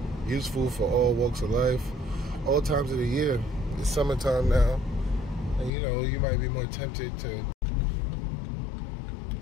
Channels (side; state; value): right; drops out; at 5.7 s